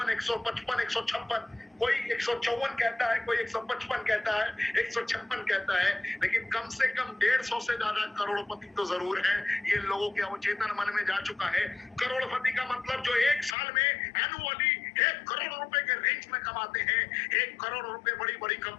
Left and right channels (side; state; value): right; drops out; at 13.6 s